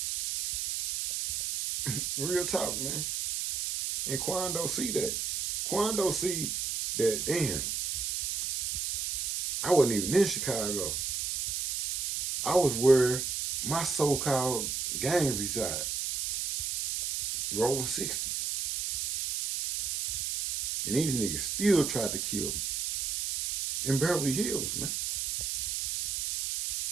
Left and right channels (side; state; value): right; noise; hiss, 1 dB below the sound